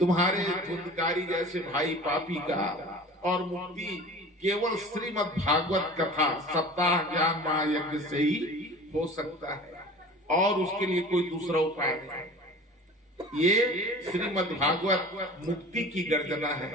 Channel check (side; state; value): both; normal; correlation 0.40